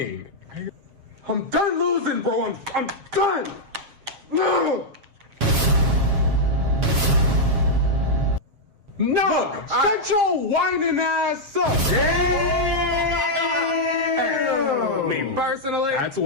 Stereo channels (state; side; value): late; left; 7.4 ms